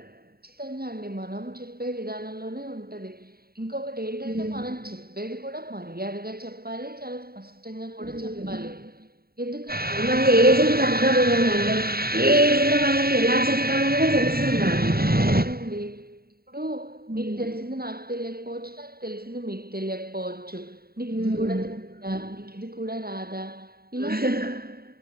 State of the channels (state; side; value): late; left; 0.45 ms